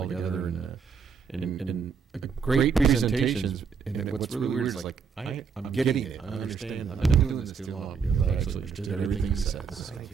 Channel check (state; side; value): quieter; left; 6.0 dB